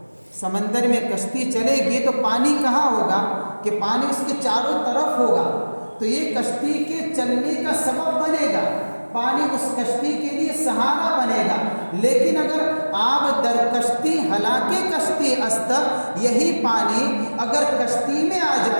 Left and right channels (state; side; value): inverted; both; correlation -1.00